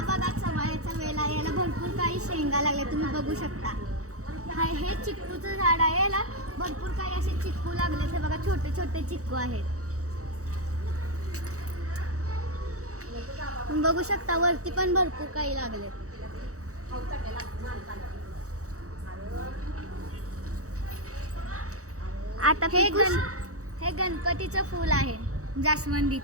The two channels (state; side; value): late; left; 0.65 ms